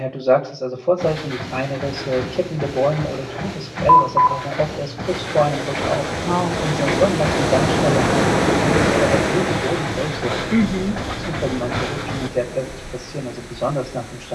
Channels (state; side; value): identical; both; correlation 1.00